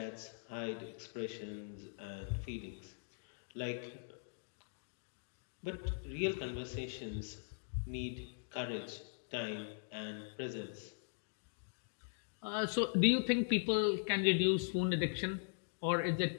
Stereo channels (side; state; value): right; silent; digital silence